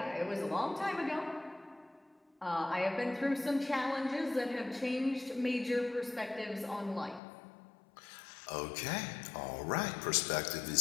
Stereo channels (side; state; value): right; drops out; at 7.2 s